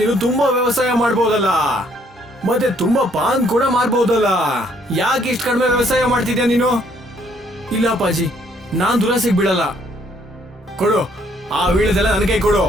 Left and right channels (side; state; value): both; normal; correlation 0.66